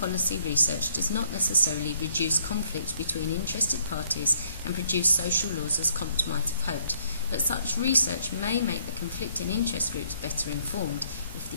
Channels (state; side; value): inverted; both; correlation -0.65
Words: research does not necessarily reduce conflict between interested parties and produce social laws as Comte might have hoped, but such research may make the conflicting interest groups better informed if